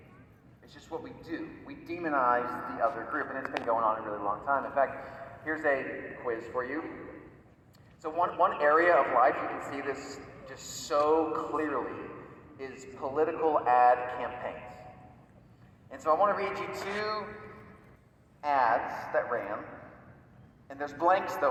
It's just what we do. We demonize the other group, and it's been going on a really long time. In fact, here's a quiz for you. So one area of life you can see this just so clearly is political ad campaigns. And so I want to read you 2 ads that ran. And there's blanks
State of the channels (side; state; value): both; identical; correlation 1.00